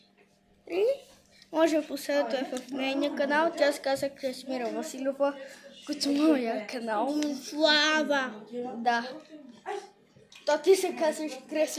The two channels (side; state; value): both; identical; correlation 1.00